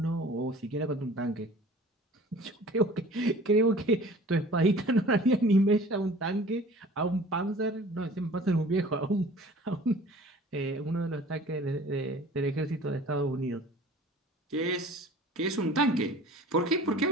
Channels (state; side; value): normal; both; correlation 0.46